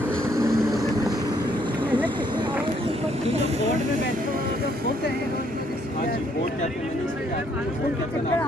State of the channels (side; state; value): both; normal; correlation 0.68